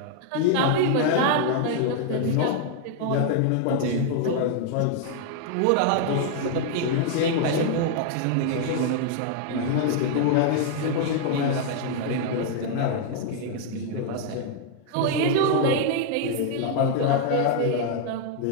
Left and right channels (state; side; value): different; both; correlation 0.00